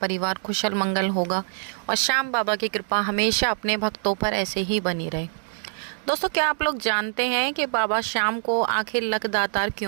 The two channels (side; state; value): left; silent; digital silence